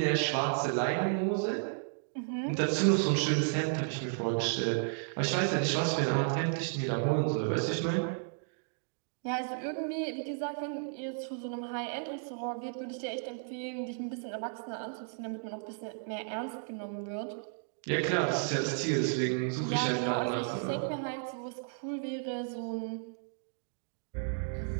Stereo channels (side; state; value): left; silent; digital silence